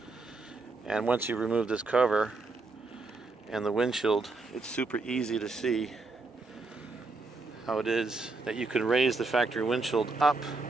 And once you remove this cover and the windshield, it's super easy to see how it is that you can raise the factory windshield up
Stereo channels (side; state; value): left; quieter; 3.6 dB